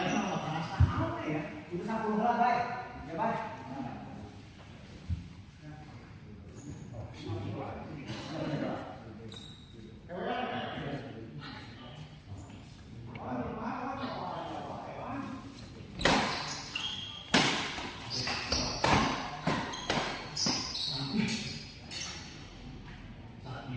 sama perasa. Apa ya? Itu 10 lah, baik. Ya, baik.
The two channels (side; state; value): both; identical; correlation 1.00